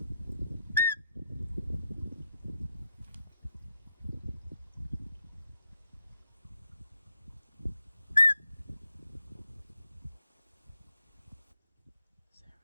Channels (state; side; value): inverted; both; correlation -0.82